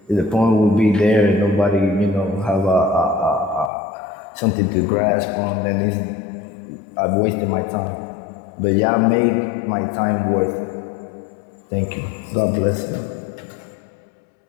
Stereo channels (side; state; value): right; drops out; at 3.7 s